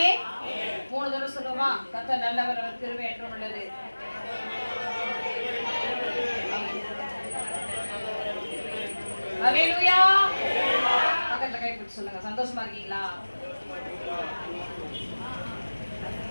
3 தடவை சொல்லுமா? கர்த்தர் நல்லவர், அவர் கிருபை என்றும் உள்ளது. ஹல்லேலூயா. பக்கத்துல கை பிடிச்சு சொல்லுங்க. சந்தோஷமா இருக்கீங்களா?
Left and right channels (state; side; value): inverted; both; correlation -1.00